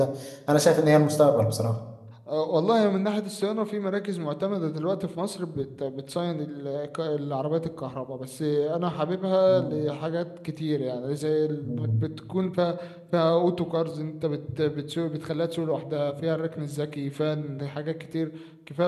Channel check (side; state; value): both; identical; correlation 1.00